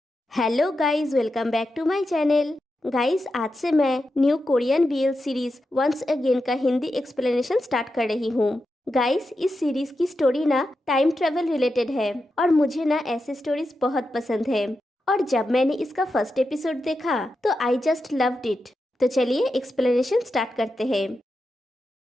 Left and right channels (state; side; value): normal; both; correlation 0.88